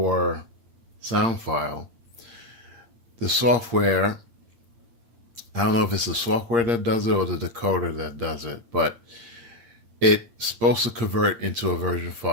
sound file, the software, I don't know if it's the software that does it or the decoder that does it, but it's supposed to convert into a version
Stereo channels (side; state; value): left; late; 8.6 ms